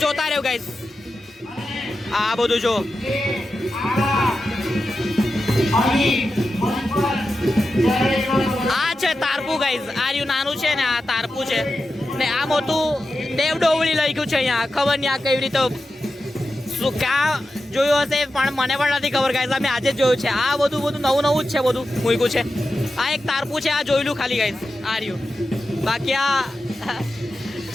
જોતા રહ્યો ગાઈઝ. આ બધું જો આ છે તારપું ગાઈઝ આ રહ્યું નાનું છે ને આ તારપું છે ને આ મોટું દેવ ડોવળી લખ્યું છે અહીંયા ખબર નહીં આ કેવી રીતે શું ક્યાં જોયું હશે પણ મને પણ નથી ખબર ગાઈઝ અમે આજે જ જોયું છે. આ બધું નવું નવું જ છે બધું મૂક્યું છે. આ એક તારપું છે આ જોયેલું ખાલી ગાઈઝ આ રહ્યું. બાકી આ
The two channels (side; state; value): both; normal; correlation 0.91